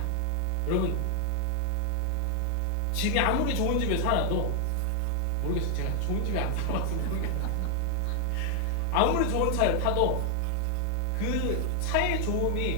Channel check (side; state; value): both; different; correlation 0.00